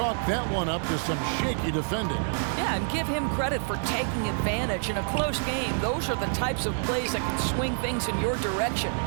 that one up to some shaky defending. Yeah, and give him credit for taking advantage in a close game. Those are the types of plays that can swing things in your direction.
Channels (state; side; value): silent; left; 60 dB below the other